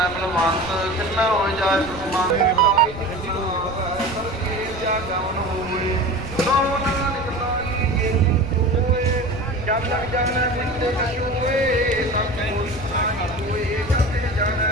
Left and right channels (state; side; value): noise; right; rumble, 15 dB below the sound